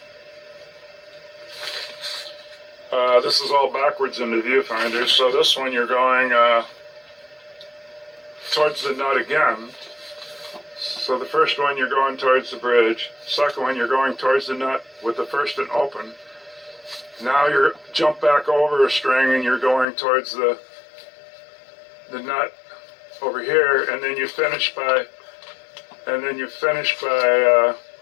this is all backwards in the viewfinder, so this one you're going towards the nut again. So the first one you're going towards the bridge, second one you're going towards the nut with the first and open. Now you're jump back over a string and you're going towards the nut over here, and then you finish by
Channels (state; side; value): drops out; right; at 19.9 s